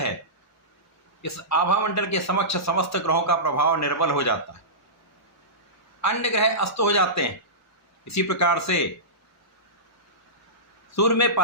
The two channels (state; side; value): normal; both; correlation -0.19